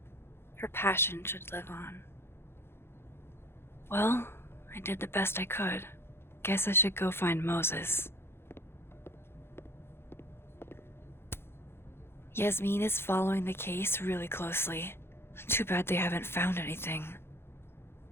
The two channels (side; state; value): right; late; 0.11 ms